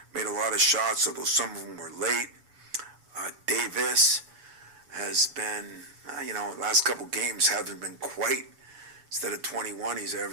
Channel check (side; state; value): left; late; 6.9 ms